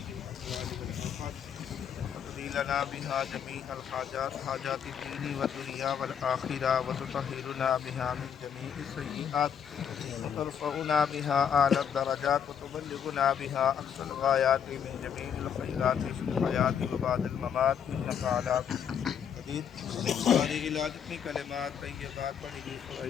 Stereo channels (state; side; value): quieter; right; 8.1 dB